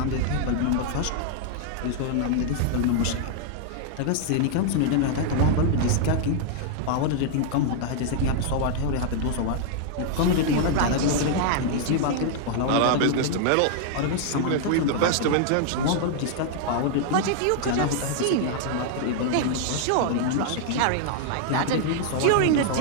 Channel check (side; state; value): both; different; correlation 0.00